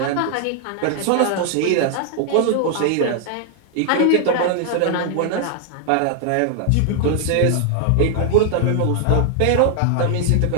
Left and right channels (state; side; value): different; both; correlation 0.00